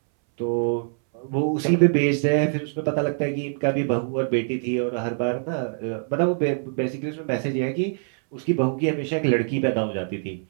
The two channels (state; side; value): silent; left; 62 dB below the other